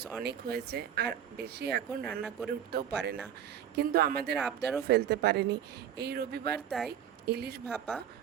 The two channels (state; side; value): quieter; left; 9.5 dB